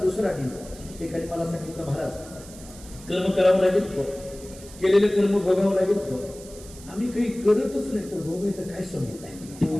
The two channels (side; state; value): right; noise; hiss, 18 dB below the sound